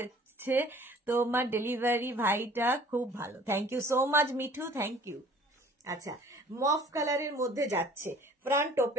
তোমার ডেলিভারি ভাইটা খুব ভালো। Thank you so much Mithu, thank you. আচ্ছা, মফ কালারের মধ্যে যাচ্ছে, ফ্রন্ট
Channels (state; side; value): normal; both; correlation 0.52